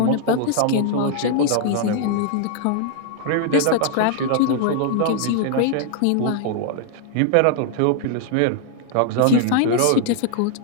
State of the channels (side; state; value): both; different; correlation 0.00